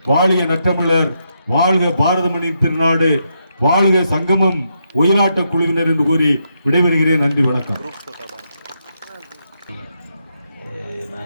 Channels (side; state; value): both; inverted; correlation -0.81